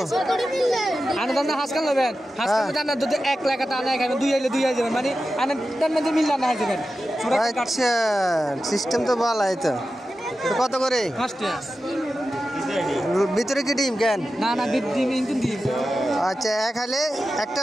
আচ্ছা সিস্টেম তো ভালো। তো কত করে? ভিতরে কি ডিম? কেন না না ডিম ডিম। আচ্ছা এক হালে একটা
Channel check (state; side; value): normal; both; correlation 0.92